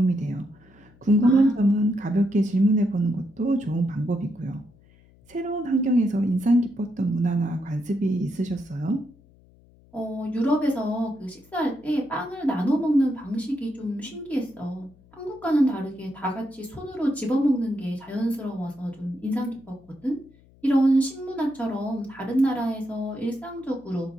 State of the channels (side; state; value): left; noise; hum, 28 dB below the sound